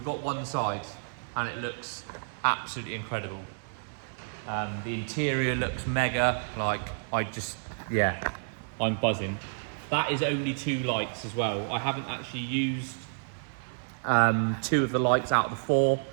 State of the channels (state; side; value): silent; left; 58 dB below the other